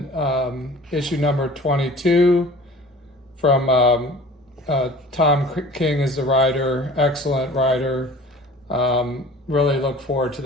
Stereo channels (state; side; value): normal; both; correlation 0.44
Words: issue number 22 from Tom King is the writer. Excellent writer. Really look forward to